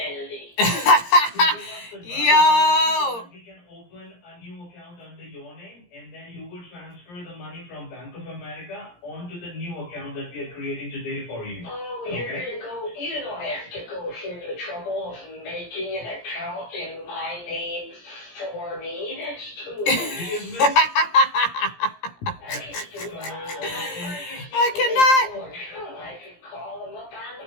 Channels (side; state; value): right; late; 17 ms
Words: Yo! We can open a new account under your name, and then you will transfer the money from Bank of America onto the new account that we are creating today for you. Oh, you're gonna go. You don't have to go through the trouble of making an account in my name for me. That's too easy. I cannot. I can call them up on